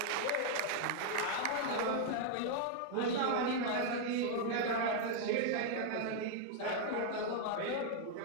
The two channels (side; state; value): both; different; correlation 0.00